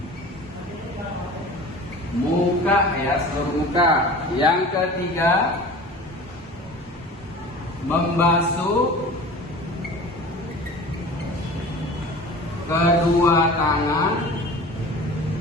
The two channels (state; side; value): normal; both; correlation 0.39